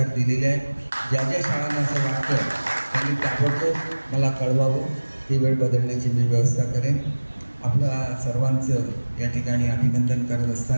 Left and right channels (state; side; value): inverted; both; correlation -1.00